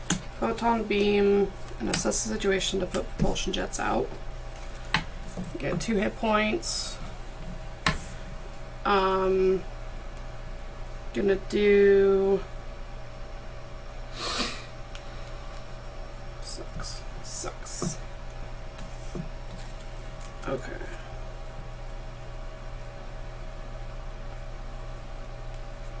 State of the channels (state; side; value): identical; both; correlation 1.00